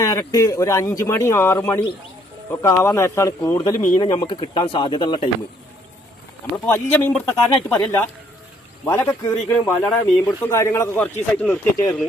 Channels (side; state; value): both; normal; correlation 0.66